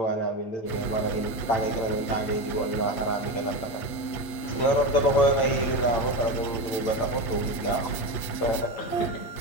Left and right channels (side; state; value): right; late; 8.4 ms